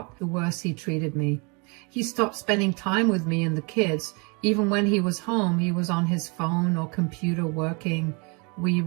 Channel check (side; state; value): left; quieter; 31.5 dB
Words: the worse he treated me. He stopped spending time with me and the kids. Even when he was home, he was on his phone or computer working. We